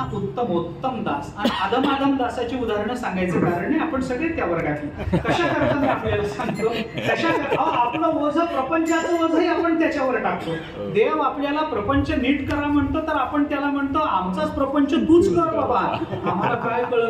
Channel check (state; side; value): identical; both; correlation 1.00